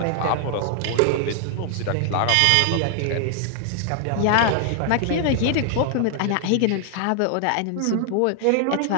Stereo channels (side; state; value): both; different; correlation 0.00